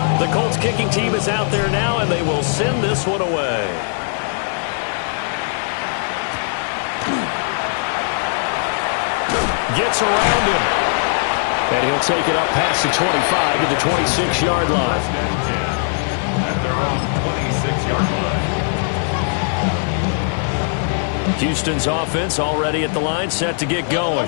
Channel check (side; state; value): right; silent; 66 dB below the other